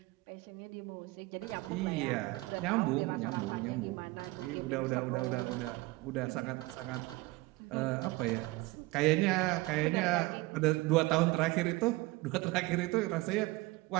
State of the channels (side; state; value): left; quieter; 21.6 dB